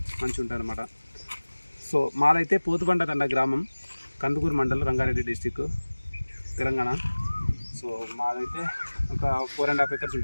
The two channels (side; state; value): both; inverted; correlation -1.00